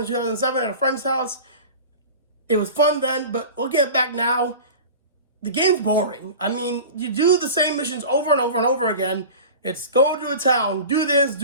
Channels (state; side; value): inverted; both; correlation -0.36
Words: 2007 at a friend's house. It was fun then, but looking at it back now, the game's boring. I mean, you do the same missions over and over and over again. It's go to a town, do this,